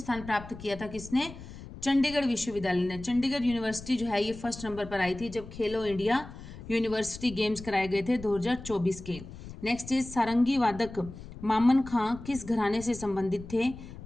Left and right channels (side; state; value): left; noise; rumble, 14 dB below the sound